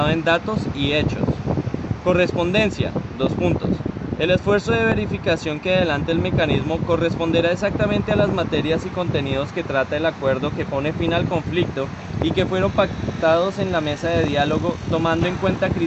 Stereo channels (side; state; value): both; identical; correlation 1.00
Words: en datos y hechos. Correspondencia. 2 puntos. El esfuerzo de verificación que adelante el mecanismo corresponderá exactamente a las materias y contenidos que trata el acuerdo que pone fin al conflicto y que fueron pactados en la mesa de diálogo, tomando en cuenta